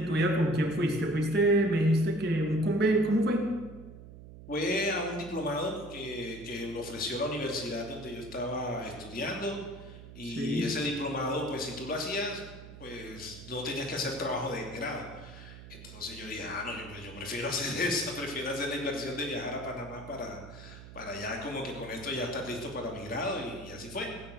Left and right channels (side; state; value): right; noise; hum, 15 dB below the sound